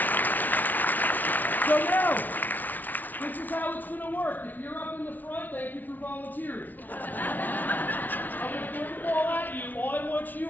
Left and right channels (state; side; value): late; right; 0.082 ms